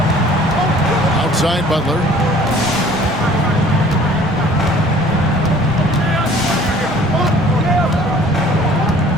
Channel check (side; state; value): both; normal; correlation 0.52